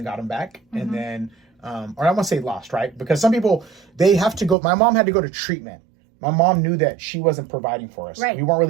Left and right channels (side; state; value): left; drops out; at 4.5 s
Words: got them back, and then or I want to say lost, right? Because some people, they have to go. My mom had to go to treatment. My mom knew that she wasn't providing for us. Right. We weren't